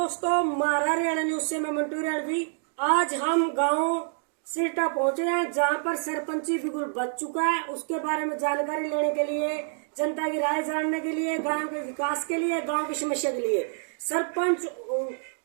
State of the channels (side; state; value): left; silent; digital silence